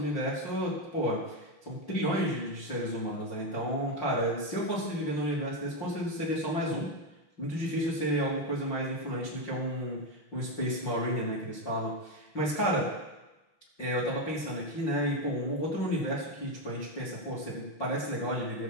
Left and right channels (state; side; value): late; right; 6.2 ms